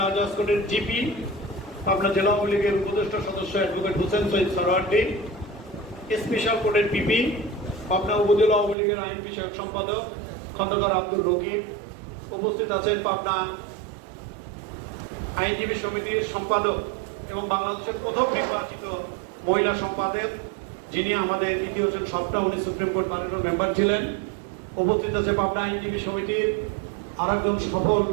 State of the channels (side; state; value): left; drops out; at 8.8 s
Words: আজাদ কোর্টের জিপি, পাবনা জেলা আওয়ামী লীগের উপদেষ্টা সদস্য অ্যাডভোকেট হোসেন সৈয়দ সরওয়ার্দী, স্পেশাল কোর্টের পিপি, পাবনা উপজেলা আওয়ামী লীগের আইন বিষয়ক সম্পাদক খন্দকার আব্দুল রকিব। উপস্থিত আছেন পাবনা আইনজীবী সমিতির সম্পাদক এবং বাংলাদেশের প্রথম নির্বাচিত মহিলা সম্পাদক, যিনি আমাদের ইতিহাসের সবটা, উনি সুপ্রিম কোর্ট প্যানেলের মেম্বার ছিলেন। উপস্থিত আছে পাবনা আইনজীবী সমিতির আরেকজন সফল